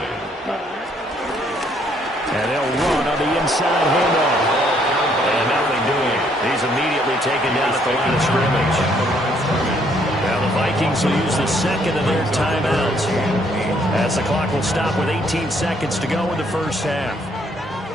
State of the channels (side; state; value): both; normal; correlation 0.67